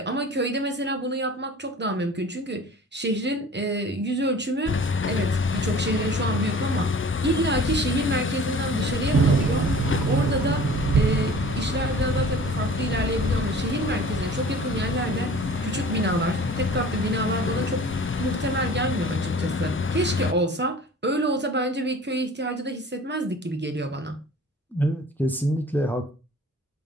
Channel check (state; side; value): normal; both; correlation 0.45